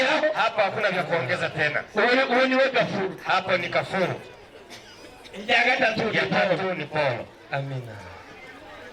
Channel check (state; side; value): identical; both; correlation 1.00